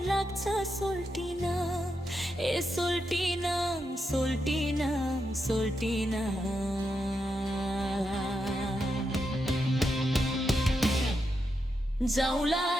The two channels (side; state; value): both; normal; correlation 0.85